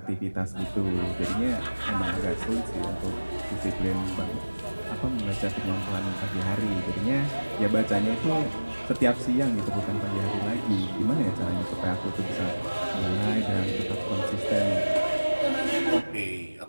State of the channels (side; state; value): both; inverted; correlation -1.00